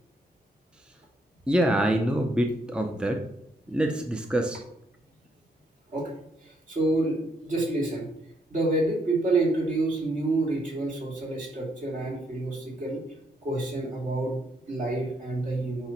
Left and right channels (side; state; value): both; normal; correlation 0.74